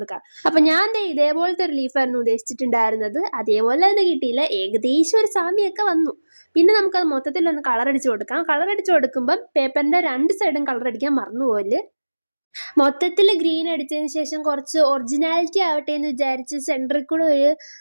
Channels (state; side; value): inverted; both; correlation -1.00